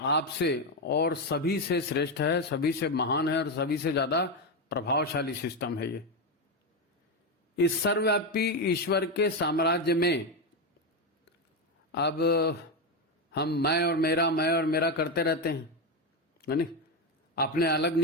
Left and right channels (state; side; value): normal; both; correlation 0.10